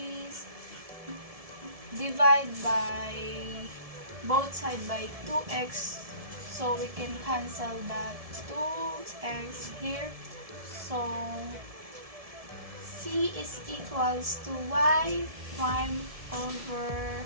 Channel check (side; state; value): left; late; 1.7 ms